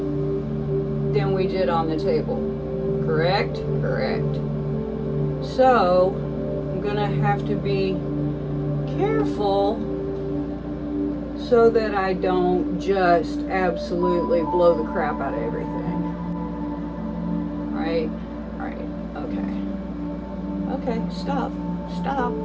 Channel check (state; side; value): identical; both; correlation 1.00